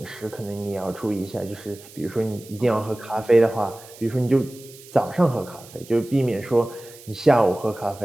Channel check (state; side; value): noise; right; hiss, 20 dB below the sound